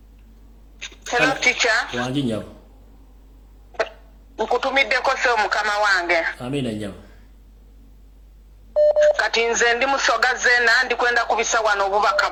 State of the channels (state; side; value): identical; both; correlation 1.00